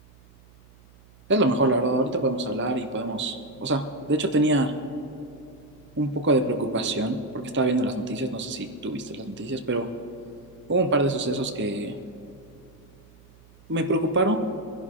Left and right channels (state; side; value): noise; right; hum, 26 dB below the sound